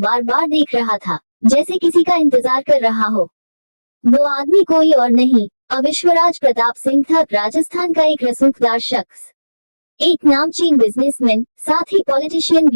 बार देख रहा था, जैसे किसी का इंतजार कर रहा हो। वो आदमी कोई और नहीं, विश्वराज प्रताप सिंह था, राजस्थान का एक रसूखदार शख्स, एक नामचीन बिजनेसमैन, साथ ही पॉलिटिशियन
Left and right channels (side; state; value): both; inverted; correlation -1.00